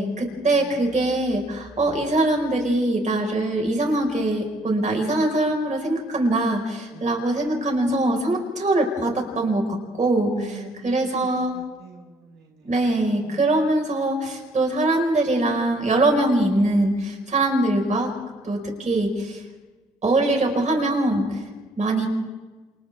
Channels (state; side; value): normal; both; correlation 0.64